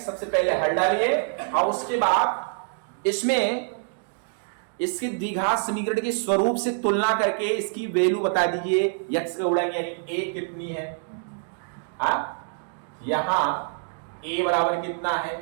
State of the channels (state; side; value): silent; left; digital silence